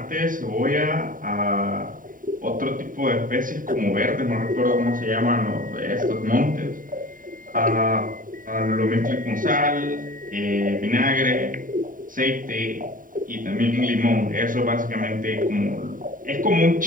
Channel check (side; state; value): left; late; 0.39 ms